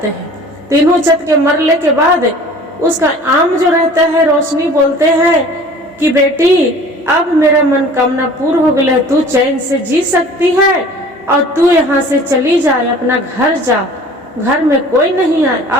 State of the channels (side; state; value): both; normal; correlation 0.46